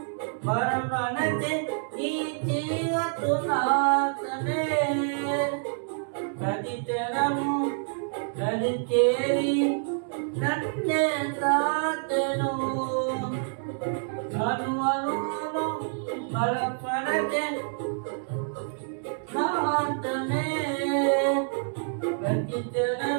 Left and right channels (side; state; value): left; silent; digital silence